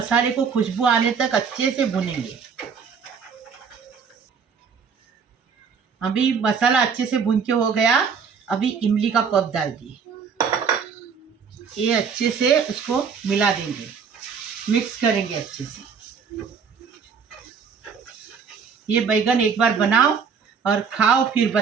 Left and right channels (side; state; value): left; quieter; 6.2 dB